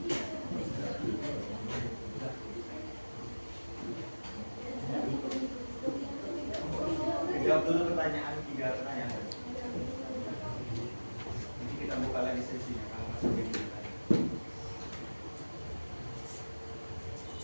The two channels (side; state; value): both; inverted; correlation -1.00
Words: dulu pertanyaan, 3 pertanyaan. Nanti kita buka lagi sesinya kalau masih begini.